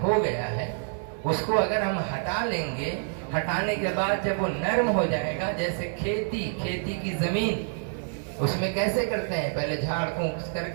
ہو گیا ہے اس کو اگر ہم ہٹا لیں گے, ہٹانے کے بعد جب وہ نرم ہو جائے گا, جیسے کھیتی کی زمین اس میں کیسے کرتے ہیں, پہلے جھاڑ پھونک کر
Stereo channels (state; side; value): silent; left; digital silence